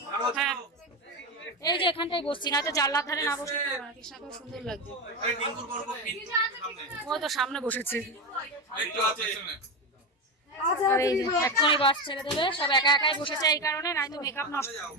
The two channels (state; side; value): normal; both; correlation 0.16